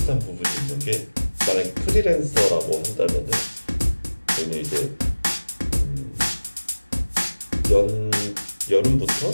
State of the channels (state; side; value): inverted; both; correlation -1.00